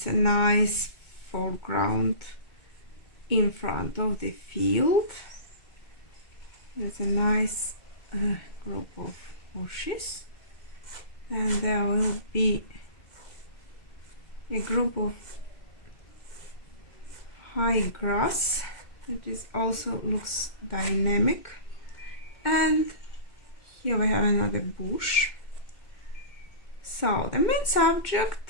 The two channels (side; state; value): right; late; 2.1 ms